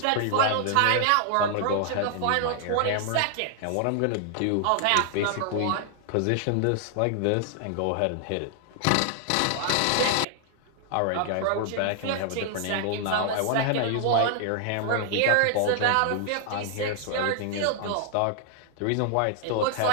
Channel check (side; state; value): both; different; correlation -0.01